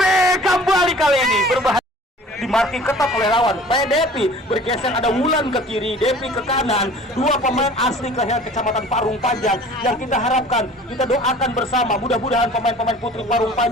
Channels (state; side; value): normal; both; correlation 0.46